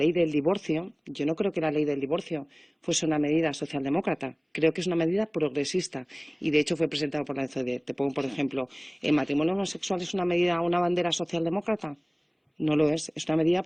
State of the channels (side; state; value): both; identical; correlation 1.00